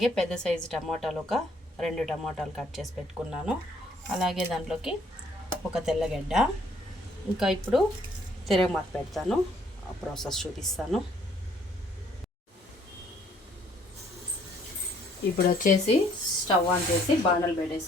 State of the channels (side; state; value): both; normal; correlation 0.63